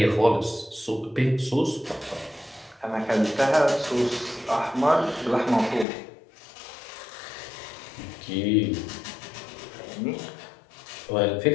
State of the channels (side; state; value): right; drops out; at 5.9 s